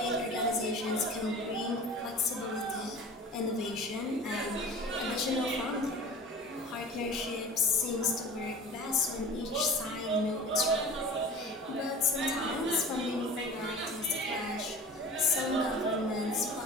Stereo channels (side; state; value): both; normal; correlation 0.39